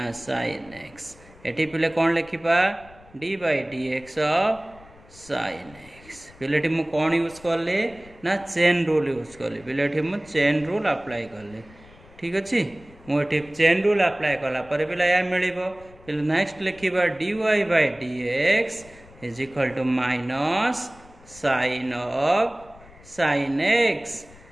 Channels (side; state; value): left; noise; rumble, 23 dB below the sound